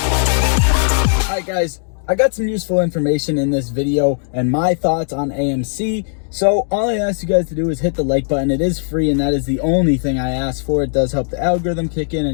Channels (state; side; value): silent; right; digital silence